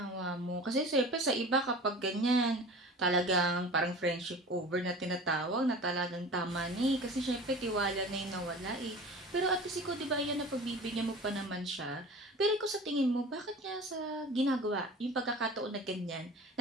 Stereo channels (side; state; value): both; normal; correlation 0.39